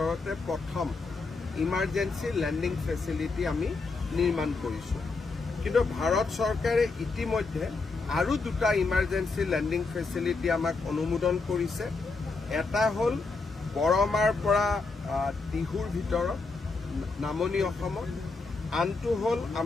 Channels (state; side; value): quieter; right; 4.0 dB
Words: প্ৰথম ইমাৰ্জেঞ্চি লেণ্ডিং ফেচিলিটি আমি নিৰ্মাণ কৰিছোঁ। কিন্তু ভাৰত চৰকাৰে ইতিমধ্যে আৰু 2টা ইমাৰ্জেঞ্চি লেণ্ডিং ফেচিলিটি আমাক অনুমোদন কৰিছে। এটা হ'ল বৰমাৰ পৰা টিহুৰ ভিতৰত নামনি অসমত, আনটো হ'ল